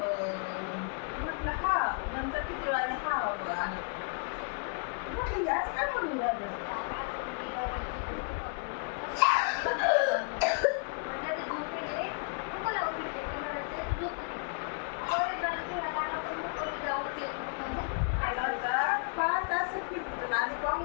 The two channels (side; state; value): right; quieter; 39.9 dB